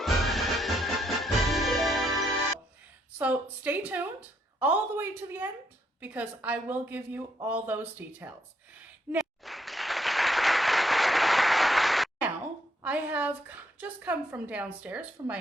So stay tuned all the way to the end because I will give you all those details. Now, I have just come from downstairs from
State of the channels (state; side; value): normal; both; correlation 0.74